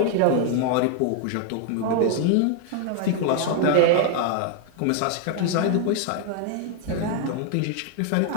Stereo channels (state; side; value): different; both; correlation 0.00